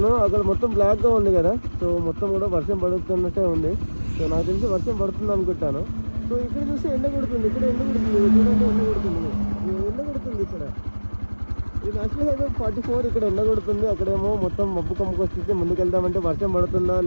అక్కడ మొత్తం బ్లాక్గా ఉంది కదా, సో మొత్తం కూడా వర్షం పడుతున్నట్టే ఉంది. సో నాకు తెలిసి వర్షం పడుతుంది అనుకుంటాను. సో ఇక్కడ చూస్తే ఎండ కొడుతుంది, ఇక్కడ ఎండ కొడుతుంది, చూడండి ఎండ కొడుతుంది, ఎండ కొడుతుంది ఇక్కడ. ఇది నేషనల్ హైవే 44, ఇక్కడ ఎండ కొడుతుంది, అక్కడేమో మొత్తం మబ్బు కమ్ముకు వస్తుంది. ముందుకు వెళ్దామంటే వర్షం పడుతుందా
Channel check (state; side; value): inverted; both; correlation -1.00